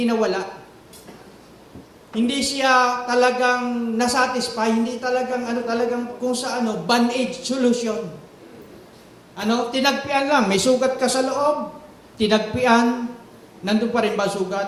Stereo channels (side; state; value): both; identical; correlation 1.00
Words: nawala. Hindi siya talagang nasatisfy, hindi talagang talagang kung sa band-aid solution. Tinagpian lang, may sugat ka sa loob, tinagpian, nandun pa rin ba